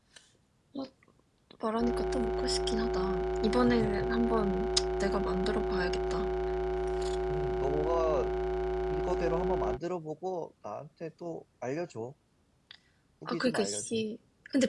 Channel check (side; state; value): both; identical; correlation 1.00